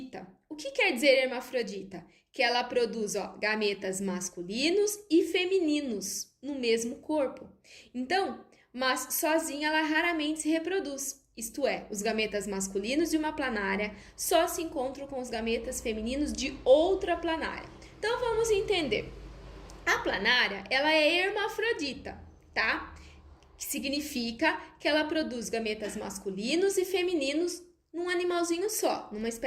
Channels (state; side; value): identical; both; correlation 1.00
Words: O que quer dizer hermafrodita? Que ela produz gametas masculinos e femininos no mesmo corpo. Então, mas sozinha ela raramente se reproduz. Isto é, os gametas masculinos de uma planária só se encontram com os gametas femininos de outra planária. Então, vamos entender. A planária, ela é hermafrodita, tá? Que significa que ela produz gametas masculinos e femininos num animalzinho só, numa